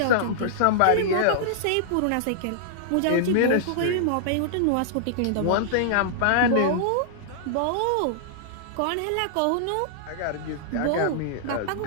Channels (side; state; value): both; different; correlation -0.01